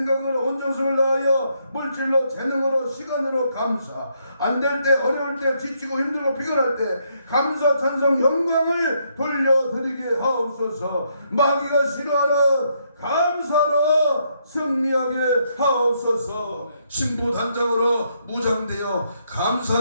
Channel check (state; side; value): inverted; both; correlation -0.75